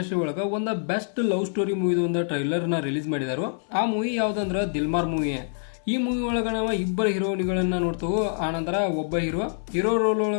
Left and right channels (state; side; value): silent; right; 61 dB below the other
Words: ಒಳಗೆ ಒಂದು ಬೆಸ್ಟ್ ಲವ್ ಸ್ಟೋರಿ ಮೂವಿದ ಒಂದು ಟ್ರೈಲರ್ನ ರಿಲೀಸ್ ಮಾಡಿದಾರು. ಆ ಮೂವಿ ಯಾವುದಂದ್ರೆ ದಿಲ್ಮಾರ್ ಮೂವಿ. ಈ ಮೂವಿ ಒಳಗೆ ನಾವು ಇಬ್ಬರು ಹೀರೋಯಿನ್ಗಳನ್ನ ನೋಡ್ತೇವೆ. ಆನಂತರ ಒಬ್ಬ ಹೀರೋ ರೋಲ್